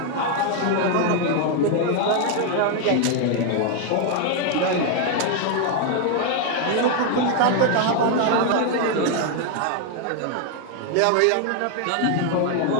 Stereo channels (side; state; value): both; different; correlation 0.00